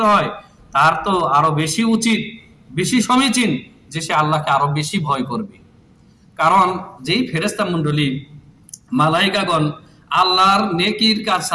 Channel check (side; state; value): both; identical; correlation 1.00